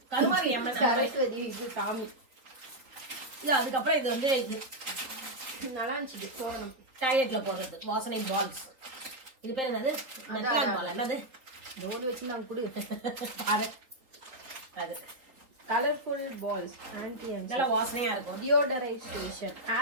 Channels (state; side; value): late; left; 3.7 ms